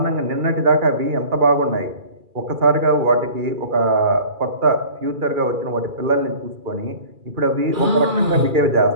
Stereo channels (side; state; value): left; late; 2.3 ms